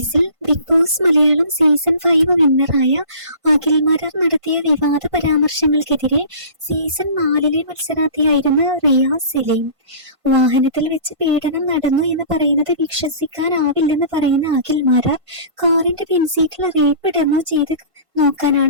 ബിഗ് ബോസ് മലയാളം സീസൺ 5 വിന്നറായ അഖിൽ മാരാർ നടത്തിയ വിവാദ പരാമർശങ്ങൾക്കെതിരെ സീസൺ 4 മത്സരാർത്ഥിയായിരുന്ന റിയാസ് സലീം. വാഹനത്തിൽ വെച്ച് പീഡനം നടന്നു എന്ന് പറയുന്നത് വിശ്വസിക്കാനാവില്ലെന്ന് പറയുന്ന അഖിൽ മാരാർ കാറിന്റെ പിൻസീറ്റിൽ റേപ്പ് ഡെമോ ചെയ്ത്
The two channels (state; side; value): late; left; 1.5 ms